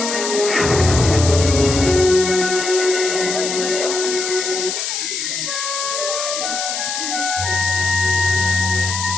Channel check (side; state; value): left; noise; hiss, 3 dB below the sound